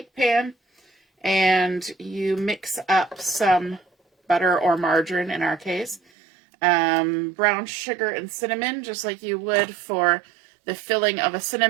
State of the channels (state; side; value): drops out; left; at 6.0 s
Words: pan and you mix up some butter or margarine in our case, brown sugar and cinnamon, just like you would for the filling of a